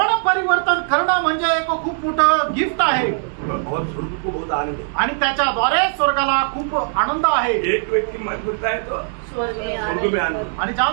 परिवर्तन करणं म्हणजे एक खूप मोठं गिफ्ट आहे और स्वर्ग को बहुत आनंद है। आणि त्याच्याद्वारे स्वर्गाला खूप आनंद आहे। एक व्यक्ति मन फिरता है तो स्वर्ग में स्वर्ग में आनंद। आणि ज्या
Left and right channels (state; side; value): silent; left; digital silence